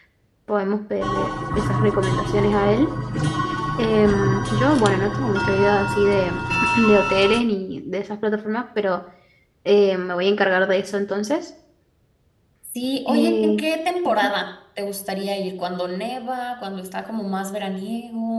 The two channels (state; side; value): identical; both; correlation 1.00